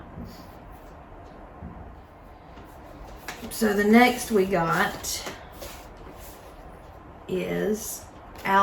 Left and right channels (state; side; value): identical; both; correlation 1.00